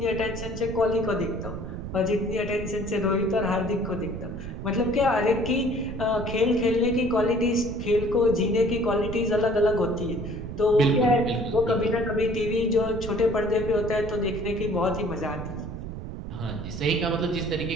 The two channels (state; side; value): noise; right; rumble, 8 dB below the sound